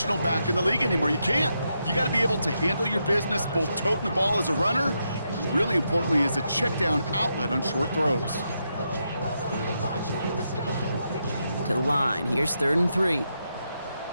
back in the league anymore. You can't. You got to be able to handle your business, both toting the ball as a runner, and really importantly as a check-down outlet on short throws. To the line, here's 3rd and 3.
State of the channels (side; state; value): both; inverted; correlation -0.83